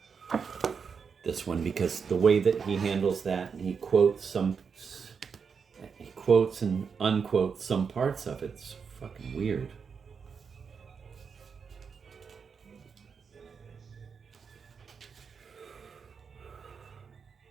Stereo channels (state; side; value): quieter; left; 6.0 dB